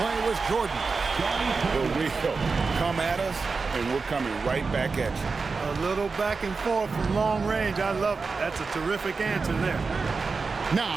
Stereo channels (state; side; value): quieter; left; 4.5 dB